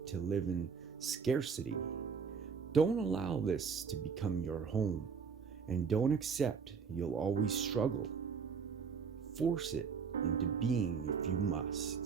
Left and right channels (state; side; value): quieter; left; 5.8 dB